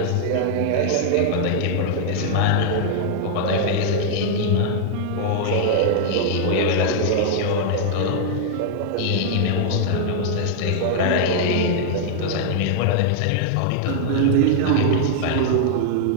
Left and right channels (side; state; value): both; different; correlation -0.01